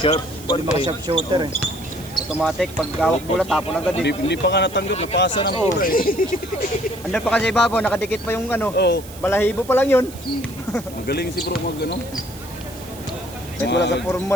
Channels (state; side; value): noise; right; hiss, 18 dB below the sound